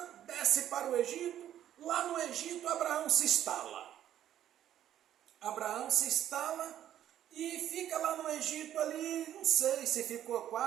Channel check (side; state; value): left; quieter; 11.3 dB